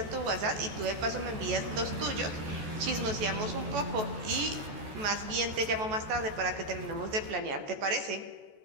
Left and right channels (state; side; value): late; left; 14 ms